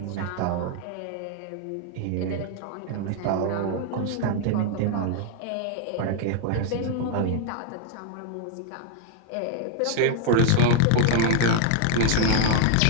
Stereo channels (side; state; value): both; different; correlation 0.00